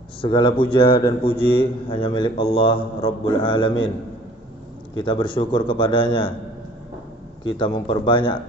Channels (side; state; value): both; normal; correlation 0.53